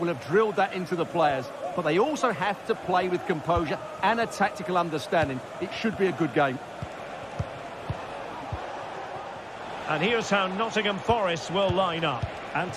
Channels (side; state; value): both; identical; correlation 1.00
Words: have drilled that into the players. But they also have to play with composure and a tactical understanding. It should be a good game. And here's how Nottingham Forest will line up.